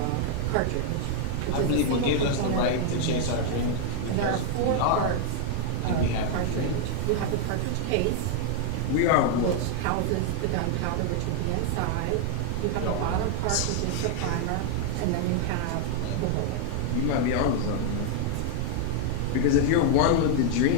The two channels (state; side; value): different; both; correlation 0.00